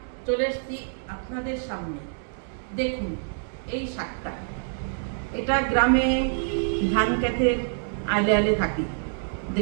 চলে এসেছি আপনাদের সামনে। দেখুন এই শাকটা, এটা গ্রামে ধান ক্ষেতের আলে আলে থাকি।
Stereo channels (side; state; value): left; silent; digital silence